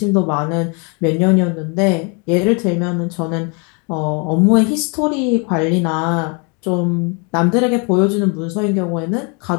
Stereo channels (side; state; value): right; quieter; 34.4 dB